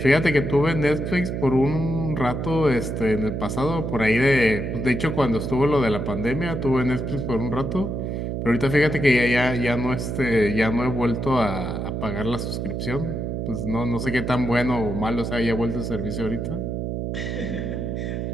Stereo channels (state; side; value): noise; right; hum, 3 dB below the sound